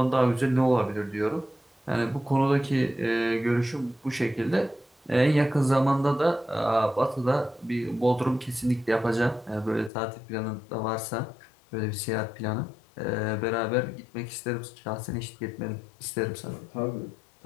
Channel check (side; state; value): right; drops out; at 9.9 s